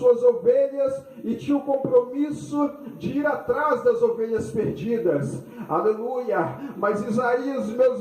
ovelhas e tinha o compromisso de ir atrás das ovelhas perdidas. Aleluia. Mas Isaías, meus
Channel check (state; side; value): identical; both; correlation 1.00